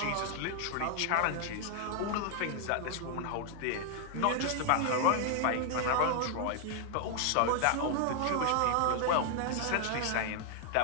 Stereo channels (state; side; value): different; both; correlation 0.00